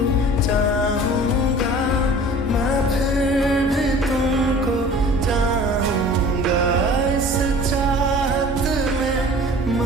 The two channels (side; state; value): both; normal; correlation 0.45